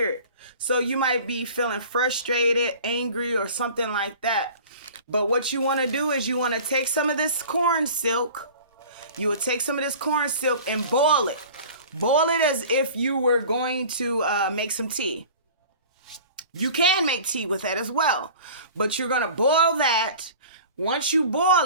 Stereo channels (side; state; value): both; inverted; correlation -0.42